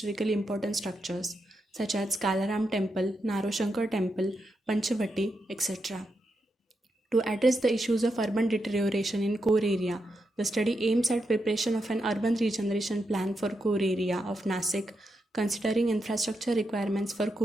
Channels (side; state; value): both; normal; correlation 0.84